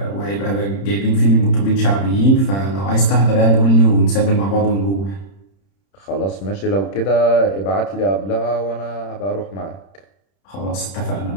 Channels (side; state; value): right; late; 31 ms